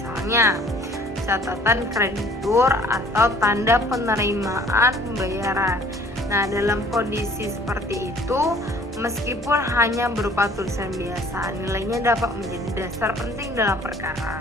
catatan kreditur atau tanda penerimaan pembayaran. Nah, dalam kondisi seperti itu, meskipun hanya berupa tulisan biasa, nilainya dapat menjadi dasar penting dalam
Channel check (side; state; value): both; normal; correlation 0.54